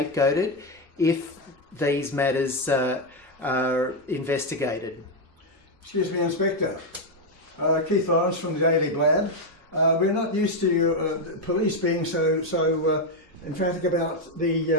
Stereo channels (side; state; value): both; normal; correlation 0.04